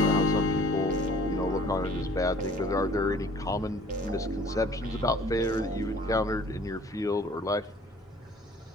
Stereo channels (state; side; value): normal; both; correlation 0.52